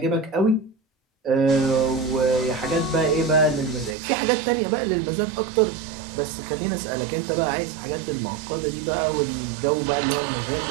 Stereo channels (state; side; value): drops out; left; at 4.0 s